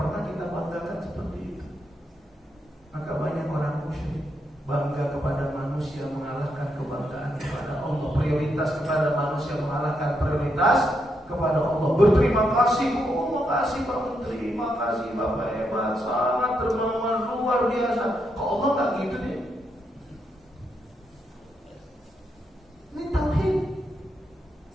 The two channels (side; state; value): both; normal; correlation 0.80